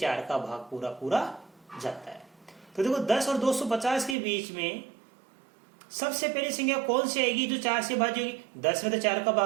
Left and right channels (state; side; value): drops out; left; at 4.2 s